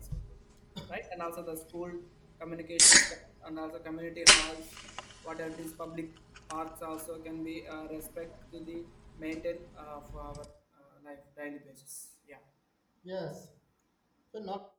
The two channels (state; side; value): identical; both; correlation 1.00